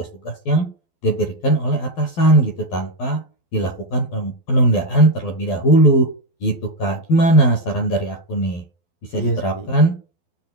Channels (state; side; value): late; right; 12 ms